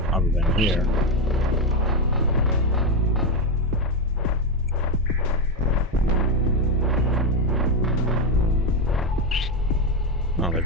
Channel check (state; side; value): normal; both; correlation 0.09